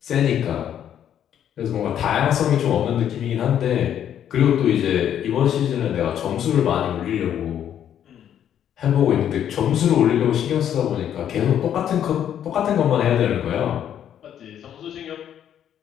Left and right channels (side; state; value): right; quieter; 9.9 dB